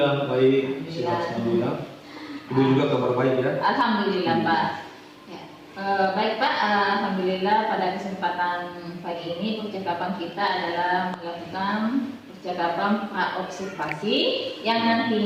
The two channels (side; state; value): both; identical; correlation 1.00